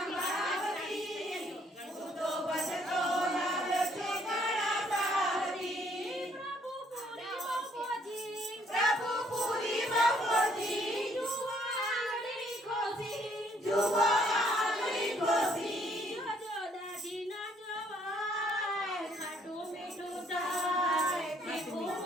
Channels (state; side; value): normal; both; correlation 0.65